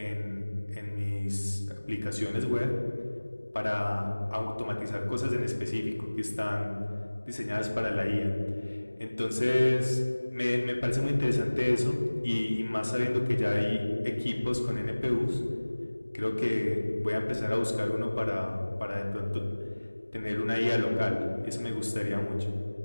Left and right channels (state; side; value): inverted; both; correlation -1.00